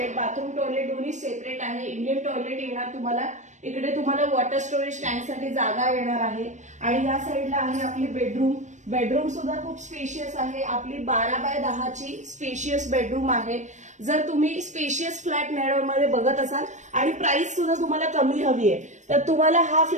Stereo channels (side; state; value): left; late; 0.35 ms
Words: बाथरूम टॉयलेट दोन्ही सेपरेट आहे। इंडियन टॉयलेट येणार तुम्हाला। इकडे तुम्हाला वॉटर स्टोरेज टँकसाठी जागा येणार आहे आणि या साईडला आहे आपली बेडरूम। बेडरूम सुद्धा खूप स्पेशियस आहे, आपली 12 बाय 10ची स्पेशियस बेडरूम आहे। जर तुम्ही स्पेशियस फ्लॅट नेरळमध्ये बघत असाल आणि प्राइस सुद्धा तुम्हाला कमी हवी आहे, तर तुम्हाला हा